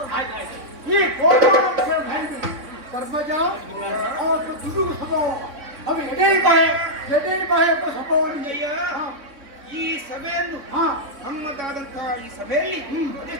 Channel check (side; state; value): left; late; 3.8 ms